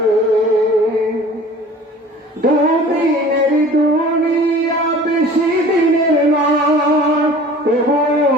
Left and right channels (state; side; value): normal; both; correlation 0.45